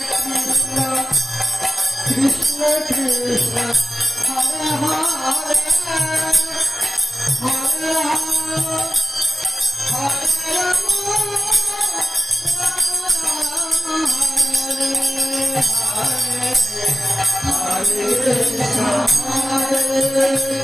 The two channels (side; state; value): both; normal; correlation 0.96